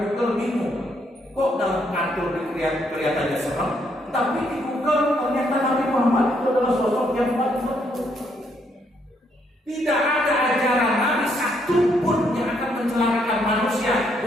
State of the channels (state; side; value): normal; both; correlation 0.73